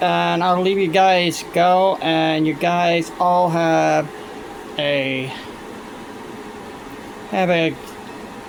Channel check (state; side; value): identical; both; correlation 1.00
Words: I'll leave you guys go, and you guys all have a